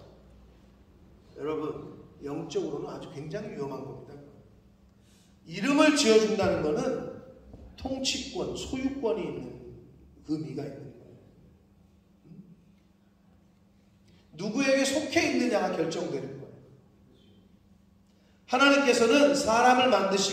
여러분, 영적으로는 아주 굉장히 위험한 겁니다. 이름을 지어준다는 것은 통치권, 소유권이 있는 의미가 있는 거예요. 누구에게 속해 있느냐가 결정되는 거예요. 하나님께서는 사람을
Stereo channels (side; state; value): both; identical; correlation 1.00